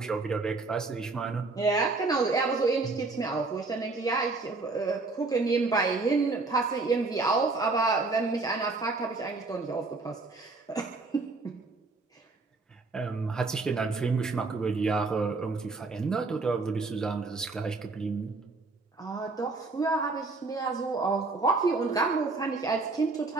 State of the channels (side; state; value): left; quieter; 3.7 dB